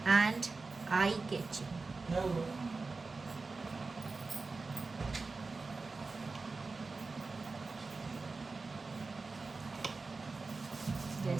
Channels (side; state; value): left; quieter; 3.9 dB